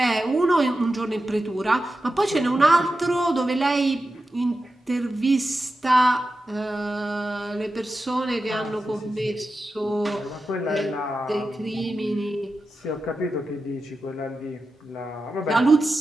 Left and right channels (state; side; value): normal; both; correlation 0.91